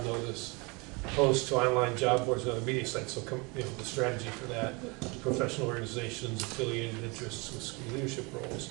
notice, post to online job boards and other media sites. So, the strategy for that, professional organizations, affiliated interests with school leadership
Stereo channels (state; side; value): quieter; left; 28.7 dB